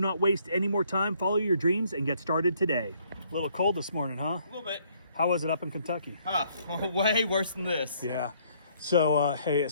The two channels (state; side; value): inverted; both; correlation -0.66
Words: waste any more time. Follow your dreams and get started today. A little cold this morning, huh? A little bit. How was it up in Kentucky? Way worse than this. Yeah. So, hey,